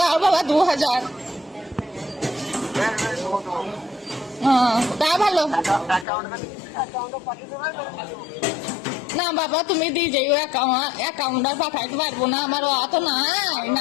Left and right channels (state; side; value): drops out; right; at 6.1 s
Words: বাবা, 2,000। বেশ বেশ দেবো দেবো। হ্যাঁ, তা ভালো। অ্যাকাউন্টে পাঠিয়ে দেবে। না বাবা, তুমি দিয়ে যাইও, অ্যাকাউন্ট আর পাঠাইতে পারবো না, আমার অত নাই,